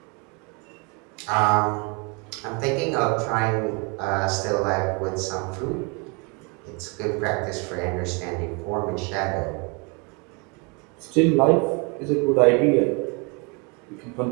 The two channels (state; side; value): quieter; left; 31.3 dB